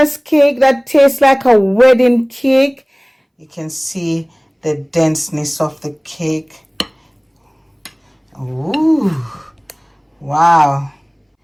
cake that tastes like a wedding cake. You can see the denseness of the cake. Ooh, wow.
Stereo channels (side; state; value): both; identical; correlation 1.00